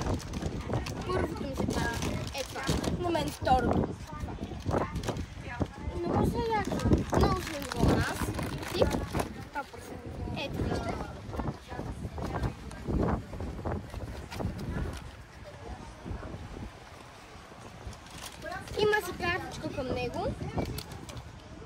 Първото ми се падна. Е това. На мен второто. Много са яко. Много са ниво на нас. Тип. Ето вижте. Има си картичка към него.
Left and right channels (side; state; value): both; identical; correlation 1.00